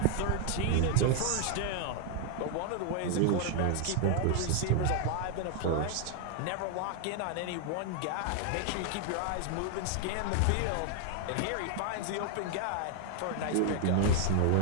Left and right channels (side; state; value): both; different; correlation 0.00